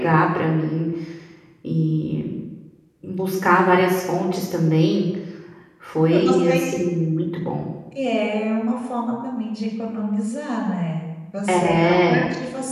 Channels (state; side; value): identical; both; correlation 1.00